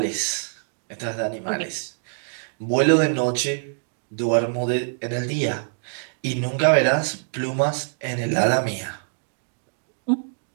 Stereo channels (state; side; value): silent; left; digital silence